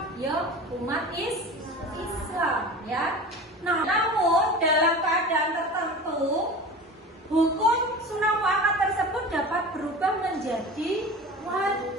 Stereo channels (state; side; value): normal; both; correlation 0.34